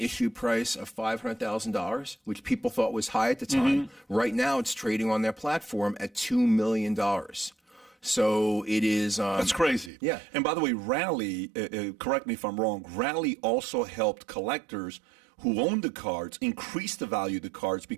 price of $500,000, which people thought was high at the time. Right now, it's trading on their platform at $2 million. So it is. That's crazy. Yeah. And by the way, Rally, correct me if I'm wrong, Rally also helped collectors who own the cards increase the value of the cards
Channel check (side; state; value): left; drops out; at 9.9 s